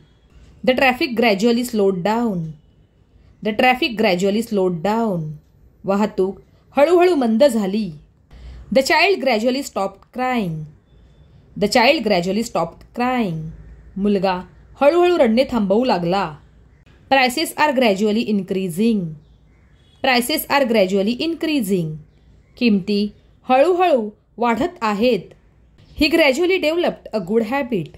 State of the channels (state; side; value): identical; both; correlation 1.00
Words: The traffic gradually slowed down. The traffic gradually slowed down. वाहतूक हळूहळू मंद झाली. The child gradually stopped crying. The child gradually stopped crying. मुलगा हळूहळू रडणे थांबवू लागला. Prices are gradually increasing. Prices are gradually increasing. किमती हळूहळू वाढत आहेत. He gradually developed a good habit.